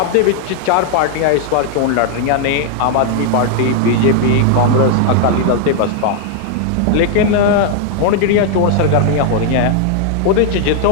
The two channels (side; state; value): both; different; correlation 0.00